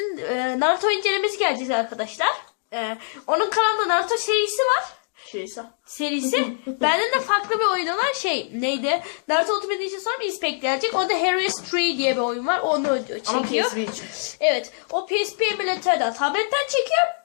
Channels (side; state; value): right; silent; digital silence